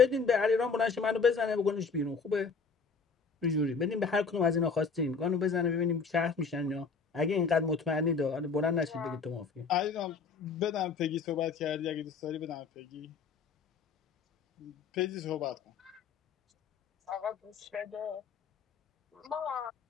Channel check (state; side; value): quieter; right; 5.1 dB